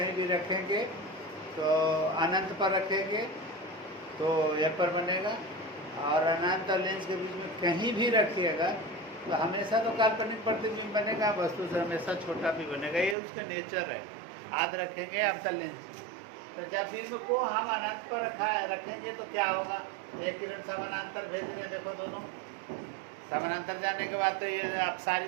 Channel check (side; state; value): left; drops out; at 13.2 s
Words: भी रखेंगे तो अनंत पर रखेंगे तो यह पर बनेगा, और अनंत और लेंस के बीच में कहीं भी रखिएगा तो हमेशा तो काल्पनिक प्रतिबिंब बनेगा, वस्तु से हमेशा छोटा भी बनेगा। ये उसका नेचर है। याद रखेंगे अवतल लेंस। तो जब बिंब को हम अनंत पर रखेंगे तो क्या होगा, एक किरण समानांतर भेज रहे हैं, देखो दोनों समानांतर जाने के बाद तो ये